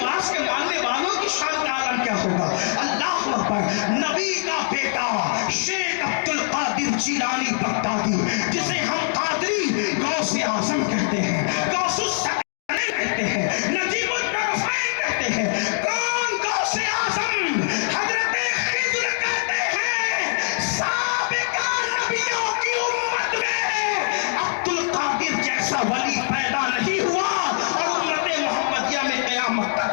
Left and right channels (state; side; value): silent; right; digital silence